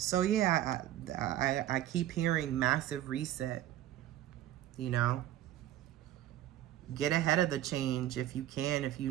yeah, I keep hearing massive reset, you know. Get ahead of the change if you can. If you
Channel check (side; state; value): left; quieter; 12.9 dB